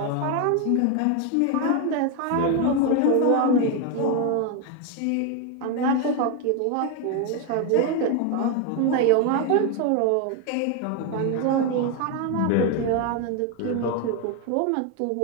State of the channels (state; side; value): different; both; correlation 0.01